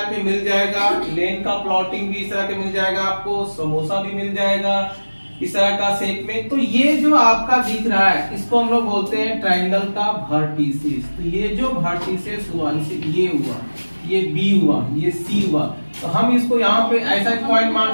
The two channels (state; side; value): inverted; both; correlation -1.00